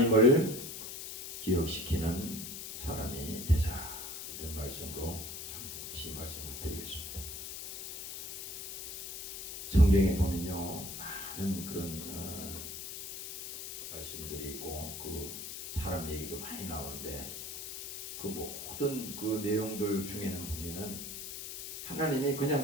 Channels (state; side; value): noise; left; hiss, 8 dB below the sound